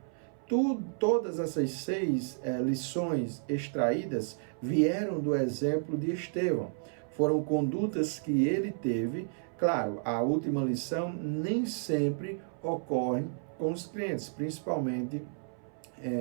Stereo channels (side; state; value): left; silent; 57 dB below the other